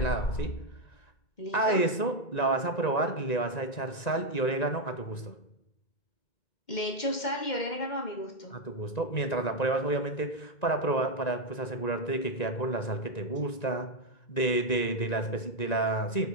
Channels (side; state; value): right; late; 1.9 ms